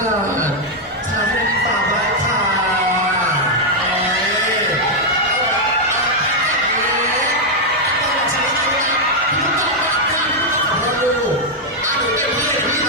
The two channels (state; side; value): normal; both; correlation -0.01